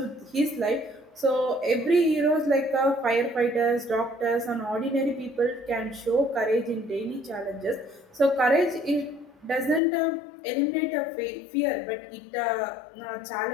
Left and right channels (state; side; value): drops out; right; at 9.8 s